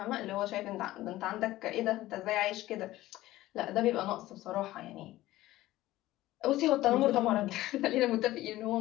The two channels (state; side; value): quieter; right; 16.3 dB